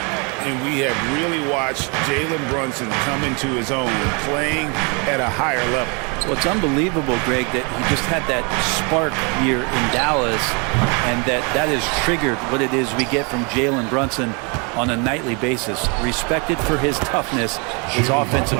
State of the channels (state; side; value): quieter; left; 32.9 dB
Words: And we have really watched Jalen Brunson come into his own, playing at a higher level. Well, it's unbelievable, Greg, that he just had that spark here in Dallas, and that has triggered what it is we get from Jalen Brunson on a nightly basis. Respected for his toughness, his